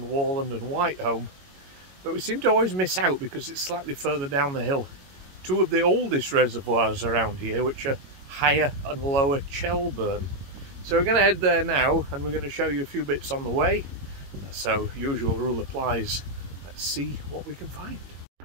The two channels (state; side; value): late; left; 22 ms